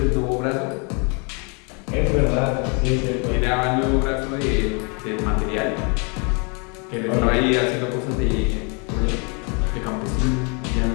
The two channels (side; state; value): right; quieter; 34.1 dB